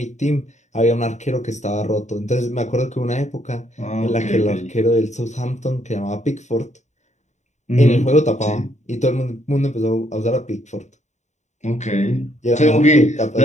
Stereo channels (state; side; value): late; right; 0.34 ms